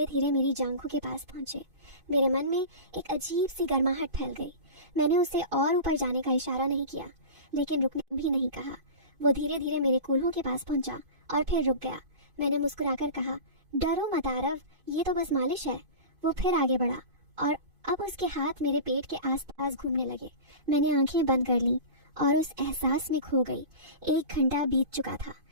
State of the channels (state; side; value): late; left; 2.5 ms